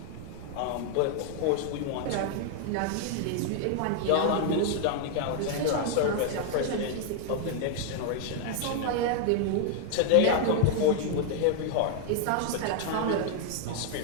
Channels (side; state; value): both; different; correlation 0.00